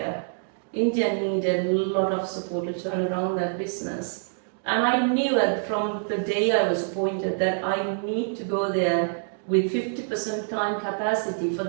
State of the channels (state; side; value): silent; left; digital silence